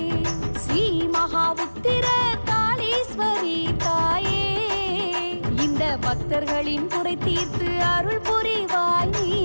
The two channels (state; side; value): inverted; both; correlation -1.00